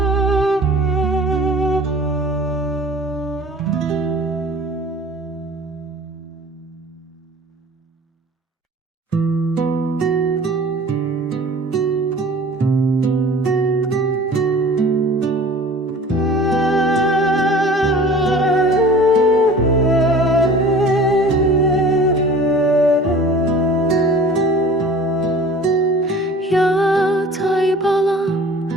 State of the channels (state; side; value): normal; both; correlation 0.44